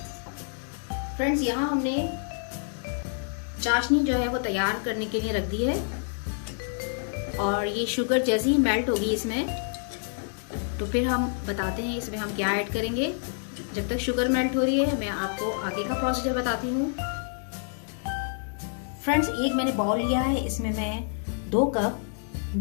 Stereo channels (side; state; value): right; silent; digital silence